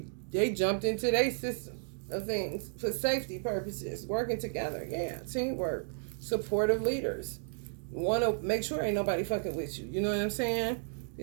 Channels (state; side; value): silent; left; digital silence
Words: they jumped into their system. of things for safety purposes. Working together, yeah, teamwork, supportive leaders. Want to make sure ain't nobody fucking with you. You know what I'm saying?